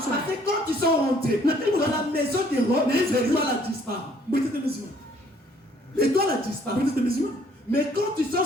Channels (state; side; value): normal; both; correlation 0.61